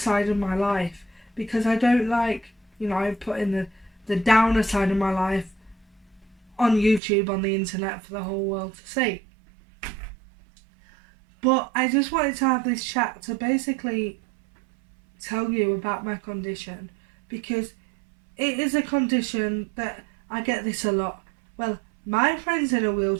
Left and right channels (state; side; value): drops out; left; at 7.0 s